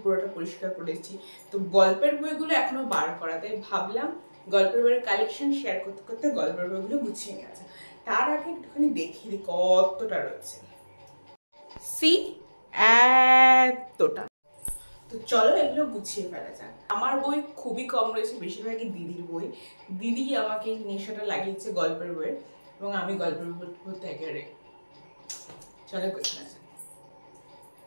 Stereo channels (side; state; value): both; inverted; correlation -1.00